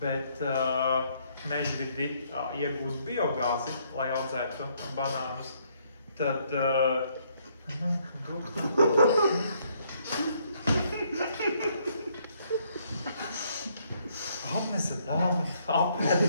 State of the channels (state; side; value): inverted; both; correlation -0.69